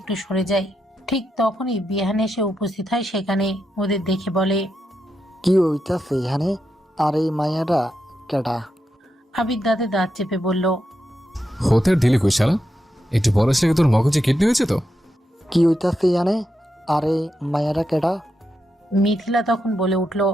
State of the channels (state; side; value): normal; both; correlation 0.85